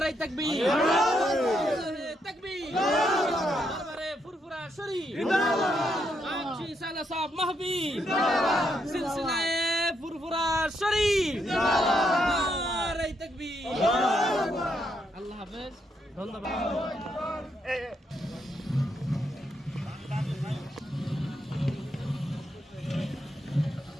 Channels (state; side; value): normal; both; correlation 0.78